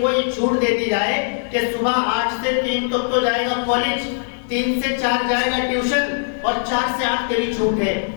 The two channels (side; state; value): right; silent; 65 dB below the other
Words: کو یہ چھوٹ دے دی جائے کہ صبح 8 سے 3 تک تو جائے گا کالج، 3 سے 4 جائے گا ٹیوشن اور 4 سے 8 تیری چھوٹ ہے،